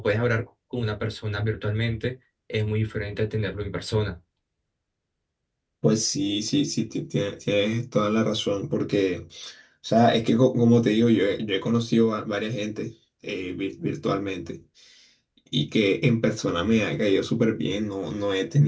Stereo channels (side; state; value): both; identical; correlation 1.00